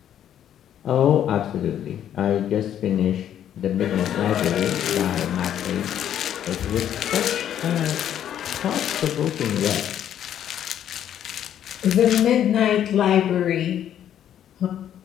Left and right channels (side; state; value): right; quieter; 10.3 dB